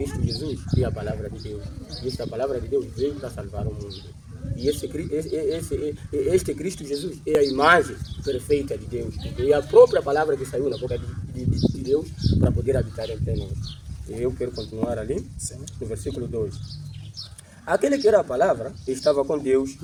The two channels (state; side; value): identical; both; correlation 1.00